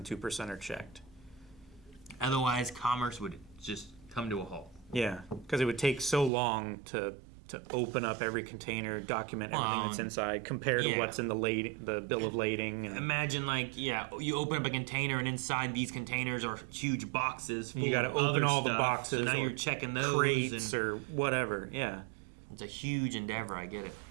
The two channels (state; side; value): drops out; left; at 6.3 s